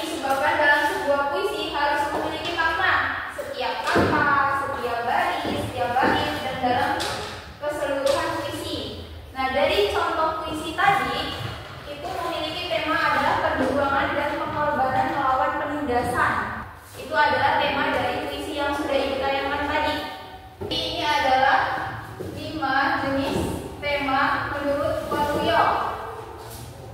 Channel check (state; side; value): identical; both; correlation 1.00